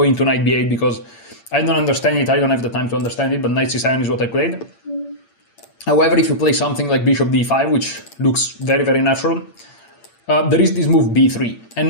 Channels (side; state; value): right; late; 8.7 ms